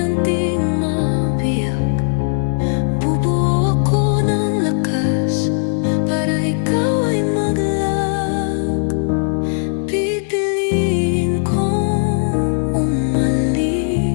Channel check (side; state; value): right; silent; 62 dB below the other